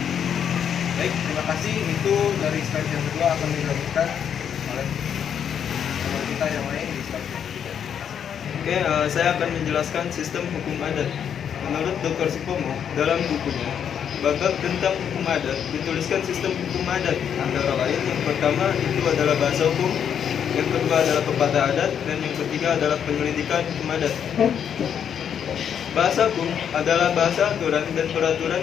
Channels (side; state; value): right; quieter; 8.3 dB